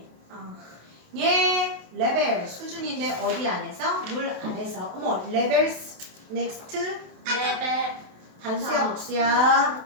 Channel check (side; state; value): left; late; 28 ms